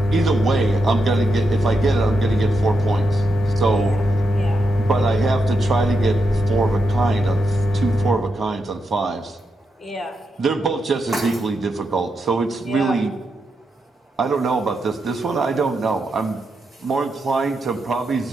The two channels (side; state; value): both; normal; correlation 0.84